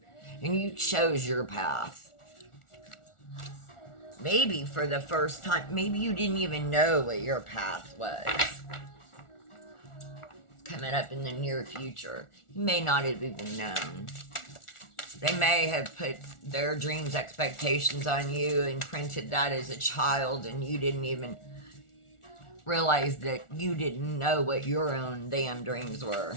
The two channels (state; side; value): late; right; 1.4 ms